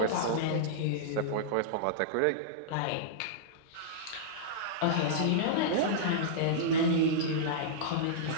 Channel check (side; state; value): both; different; correlation -0.03